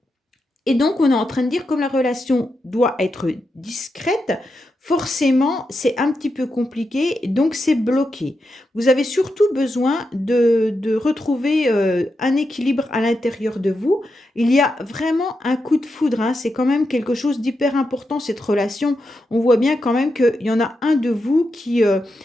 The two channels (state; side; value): normal; both; correlation 0.86